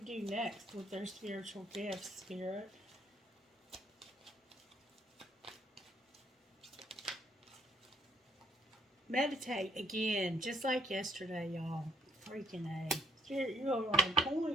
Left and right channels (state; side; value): normal; both; correlation 0.66